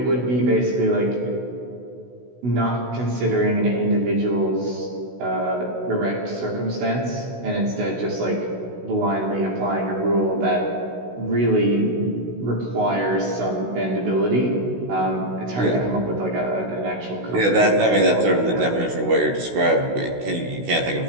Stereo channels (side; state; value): left; late; 16 ms